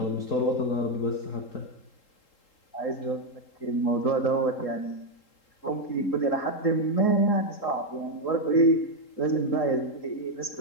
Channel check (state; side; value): late; right; 3.8 ms